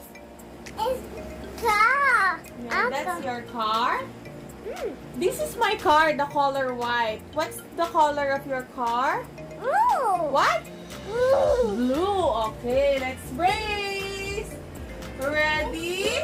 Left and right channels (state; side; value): identical; both; correlation 1.00